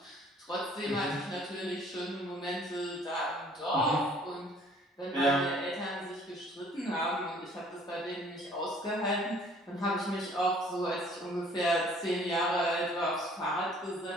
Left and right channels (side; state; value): both; normal; correlation 0.56